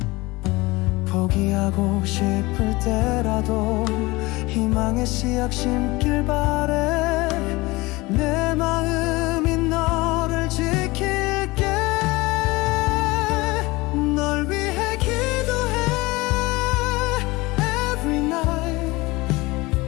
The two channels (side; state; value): right; quieter; 22.1 dB